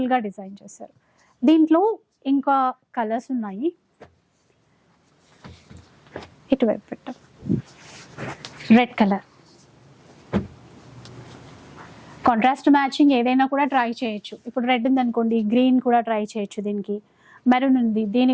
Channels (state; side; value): identical; both; correlation 1.00